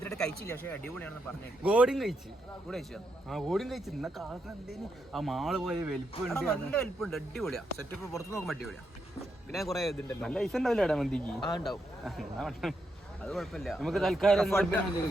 കഴിച്ചില്ല, പക്ഷെ അടിപൊളിയാണെന്ന് പറഞ്ഞു. ഗോഡിയും കഴിച്ച്. ഗോഡിയും കഴിച്ചു. ഇന്ന കാലത്ത് എന്തേലും ആ മാള് പോയ വലിപ്പമുണ്ട്. നല്ല വലിപ്പമുണ്ട്. അടിപൊളിയാ. സെറ്റപ്പ് പുറത്ത് നോക്കുമ്പോ അടിപൊളിയാ. പിന്നെ കുറെ ഇതുണ്ടല്ലോ. നല്ല പൈസ ഉണ്ടാവില്ല മന്തിക്ക്. ഉണ്ടാവും. അത് കുഴപ്പമില്ല. നമുക്ക് തൽക്കാലം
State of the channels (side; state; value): both; normal; correlation 0.81